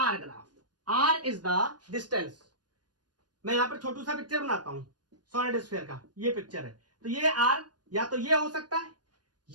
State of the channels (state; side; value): late; left; 0.69 ms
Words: graph. R is the distance। मैं यहां पर छोटू सा पिक्चर बनाता हूं सॉलिड स्फीयर का, ये पिक्चर है। तो ये R या तो ये हो सकता है,